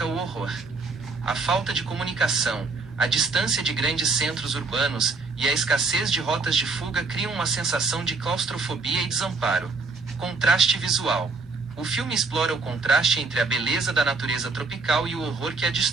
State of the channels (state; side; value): quieter; left; 4.1 dB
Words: o horror. A falta de comunicação, a distância de grandes centros urbanos e a escassez de rotas de fuga criam uma sensação de claustrofobia e desamparo. Contraste visual. O filme explora o contraste entre a beleza da natureza tropical e o horror que a